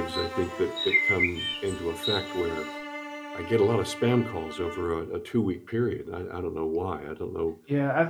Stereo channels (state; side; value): identical; both; correlation 1.00